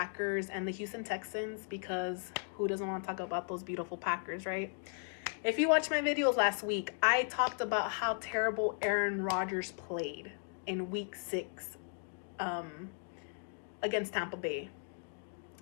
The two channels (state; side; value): silent; right; 54 dB below the other